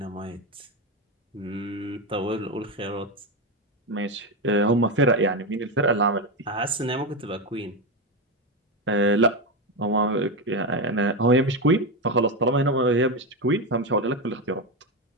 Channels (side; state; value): both; normal; correlation 0.12